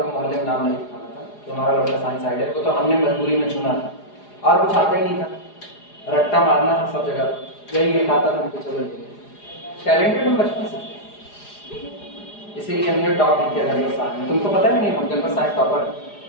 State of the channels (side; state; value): right; late; 4.9 ms